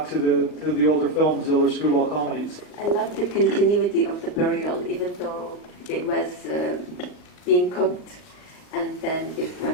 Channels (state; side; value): late; right; 39 ms